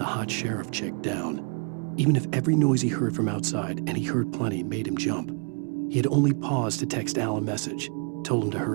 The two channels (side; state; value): left; quieter; 39.8 dB